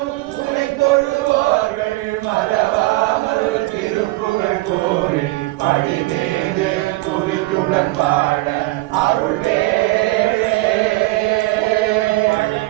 துணை தொழுவோர்கள் மறவாமல் திருப்புகழ் கூறி படிமீது துதித்துடன் வாழ அருள்வேளே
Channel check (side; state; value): left; quieter; 20.5 dB